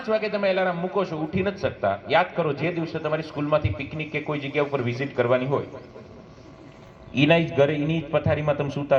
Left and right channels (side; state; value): both; identical; correlation 1.00